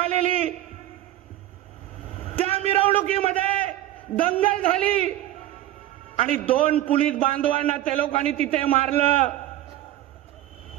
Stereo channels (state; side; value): quieter; left; 14.1 dB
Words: त्या मिरवणुकीमध्ये दंगल झाली आणि 2 पोलीस बांधवांना त्या लोकांनी तिथे मारलं.